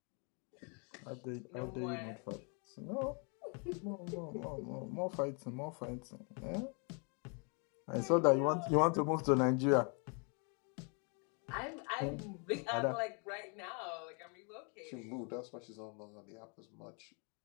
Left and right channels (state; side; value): quieter; right; 36.7 dB